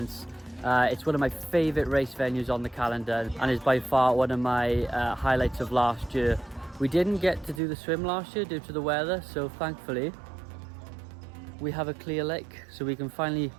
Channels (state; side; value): drops out; left; at 7.6 s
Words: It's one of my favourite race venues on the calendar and is by far one of my highlights of last year. We didn't get to do the swim last year due to the weather, so thankfully we have a clear lake, so we can finally,